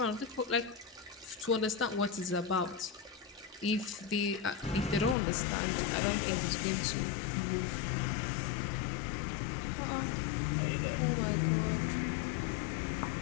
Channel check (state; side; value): drops out; right; at 5.2 s